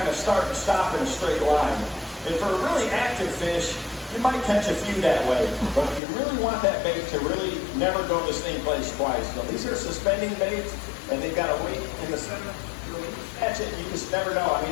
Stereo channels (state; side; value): drops out; right; at 6.0 s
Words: of start and stop in a straight line. And for a really active fish, you might catch a few that way, but you really want that bait to really never go to the same place twice. So these are suspending baits, and they've got a weight in the center. When you catch it, you just never know. I